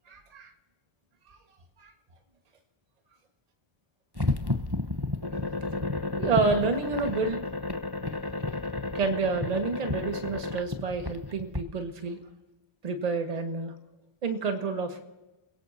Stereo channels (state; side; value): late; left; 1.1 ms